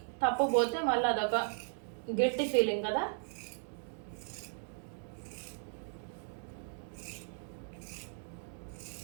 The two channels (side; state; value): left; silent; digital silence